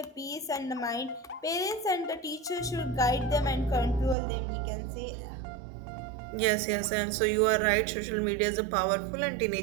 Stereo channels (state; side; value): drops out; left; at 4.2 s